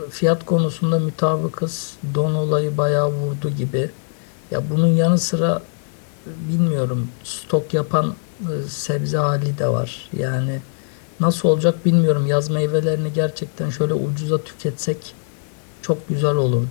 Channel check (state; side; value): silent; right; 56 dB below the other